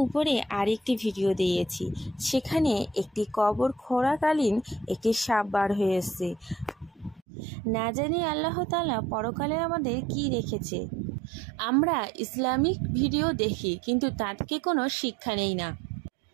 উপরে আরেকটি ভিডিও দিয়েছি, সেখানে একটি কবর খোঁড়াকালীন একটি সাপ বার হয়ে এসেছে। না জানি আল্লাহ তাআলা পরকালে আমাদের কি রেখেছে। আমরা ইসলামিক ভিডিও দেখি, কিন্তু তা থেকে কোনো শিক্ষা নেই না।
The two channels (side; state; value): left; drops out; at 7.2 s